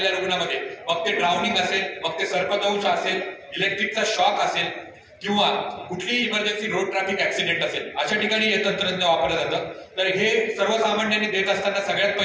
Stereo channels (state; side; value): identical; both; correlation 1.00